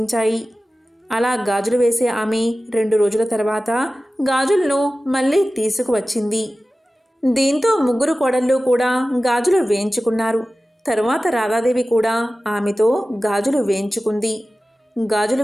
అలా గాజులు వేసే ఆమె 2 రోజుల తర్వాత గాజులను మళ్ళీ తీసుకువచ్చింది. దీంతో 3 కోడళ్ళు కూడా గాజులు వేయించుకున్నారు. తరువాత రాధాదేవి కూడా ఆమెతో గాజులు వేయించుకుంది. గాజులు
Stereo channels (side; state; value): both; normal; correlation 0.96